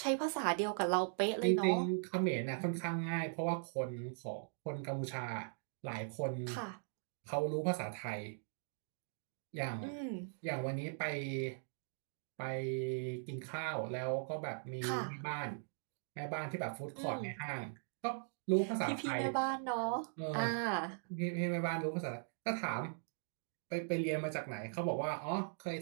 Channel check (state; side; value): silent; left; digital silence